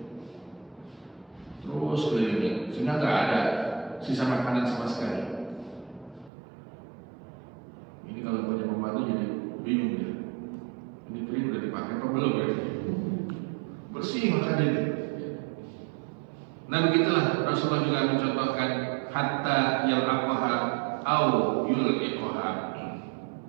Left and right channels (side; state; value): left; drops out; at 6.3 s